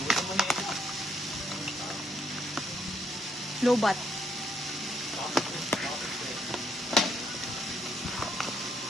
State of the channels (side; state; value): both; normal; correlation 0.73